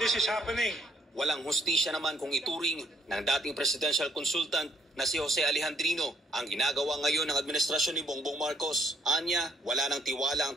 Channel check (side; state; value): both; normal; correlation 0.65